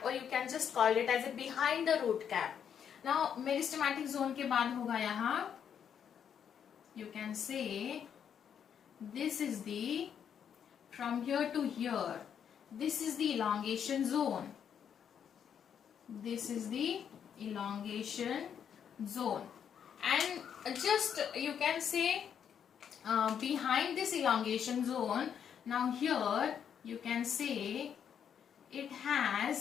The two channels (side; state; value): right; quieter; 8.2 dB